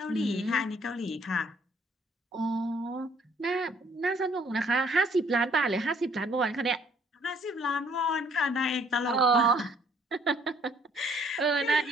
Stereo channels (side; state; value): both; normal; correlation 0.63